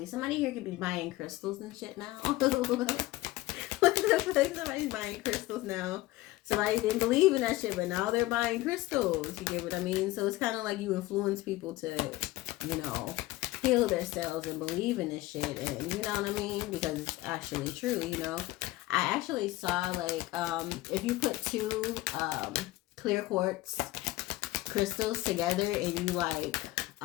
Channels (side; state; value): right; quieter; 18.2 dB